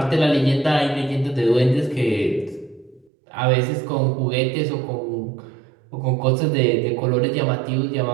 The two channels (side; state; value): left; drops out; at 3.1 s